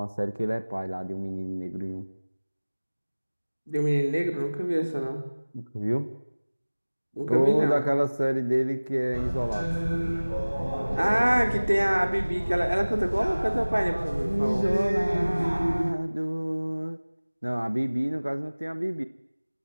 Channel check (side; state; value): both; inverted; correlation -1.00